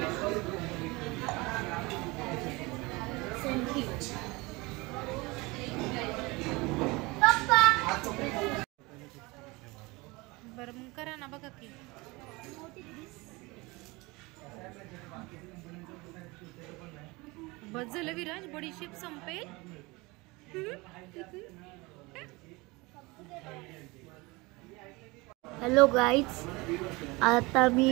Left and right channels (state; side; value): quieter; left; 24.0 dB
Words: बरं मग करा ना बघा की. बस झालं विराज बडीशेप संपेल. हॅलो गाईज, आता